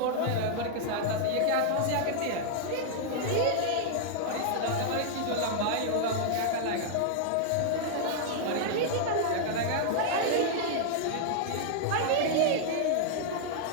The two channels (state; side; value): different; both; correlation -0.01